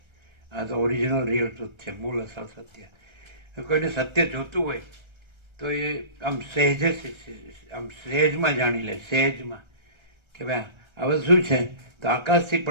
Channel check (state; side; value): late; left; 1.3 ms